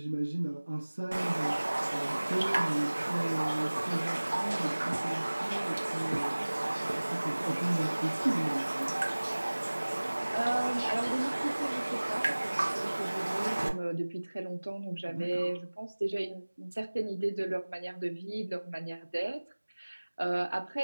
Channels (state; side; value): inverted; both; correlation -1.00